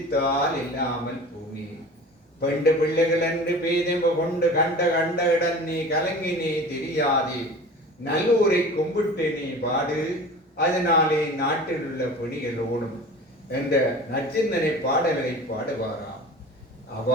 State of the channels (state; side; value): normal; both; correlation 0.38